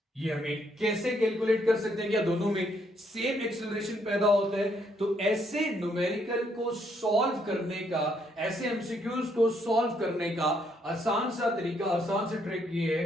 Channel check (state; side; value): normal; both; correlation 0.72